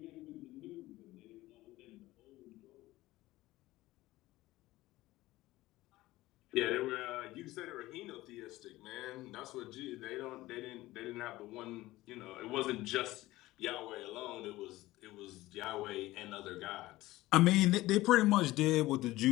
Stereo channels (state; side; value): quieter; right; 17.7 dB